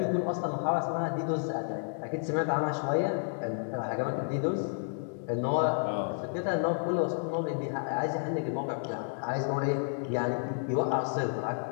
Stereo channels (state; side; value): silent; right; digital silence